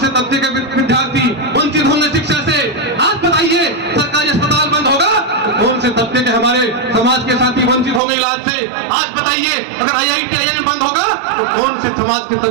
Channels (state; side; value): drops out; left; at 8.0 s